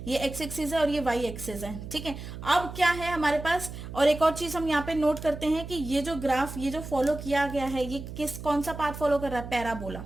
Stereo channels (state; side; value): noise; right; hum, 10 dB below the sound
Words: ये एक्स एक्सिस है और ये वाई एक्सिस है। ठीक है, अब क्या है हमारे पास? और एक और चीज हम यहाँ पे नोट करते हैं कि ये जो ग्राफ, ये जो फॉलो किया गया है, ये कौन सा पाथ फॉलो कर रहा है? पैराबोला।